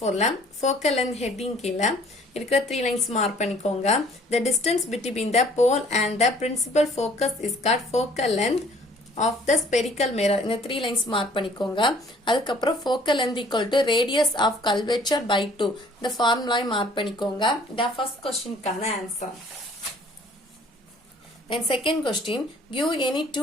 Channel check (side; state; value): both; normal; correlation 0.56